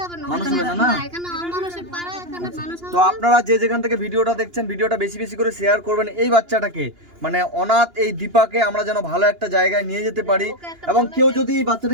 হবে না। মানুষ হবে না, না? এখানে অমানুষের পাড়া, এখানে মানুষ হবে তো আপনারা যে যেখান থেকে ভিডিওটা দেখছেন, ভিডিওটা বেশি বেশি করে শেয়ার করবেন। এই বাচ্চাটাকে, মানে অনাথ এই দীপাকে আমরা যেন ভালো একটা জায়গায় নিয়ে যেতে পারি, এবং কেউ যদি এই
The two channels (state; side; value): late; left; 2.9 ms